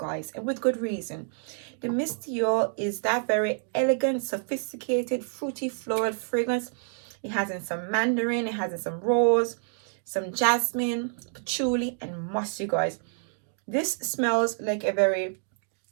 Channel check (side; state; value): left; silent; 58 dB below the other